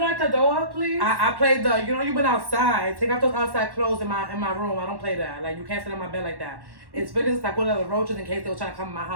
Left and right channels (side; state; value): left; late; 1.1 ms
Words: at the door, please. I played the, you know, you went outside. Take out those outside clothes in my room. I don't play that. Like you can't sit on my bed like that. It's because I put out the roaches in case they were trying to come in my